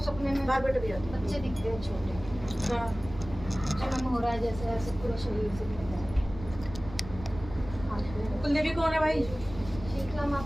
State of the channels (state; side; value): noise; right; rumble, 13 dB below the sound